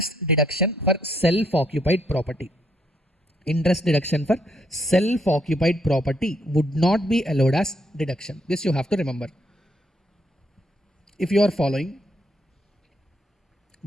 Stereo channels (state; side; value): normal; both; correlation 0.73